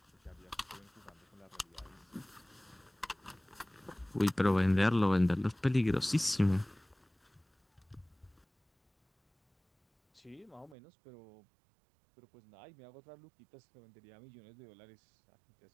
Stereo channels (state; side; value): drops out; left; at 10.8 s